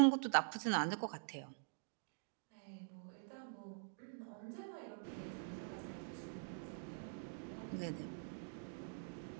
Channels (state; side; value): silent; left; digital silence